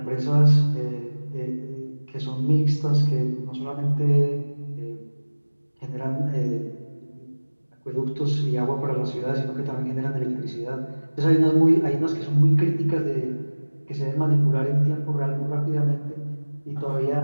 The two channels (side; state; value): both; inverted; correlation -1.00